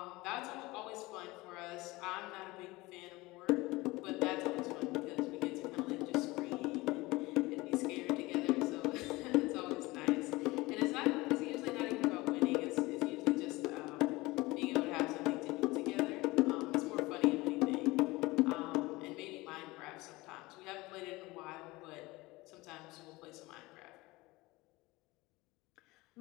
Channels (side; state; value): right; quieter; 21.2 dB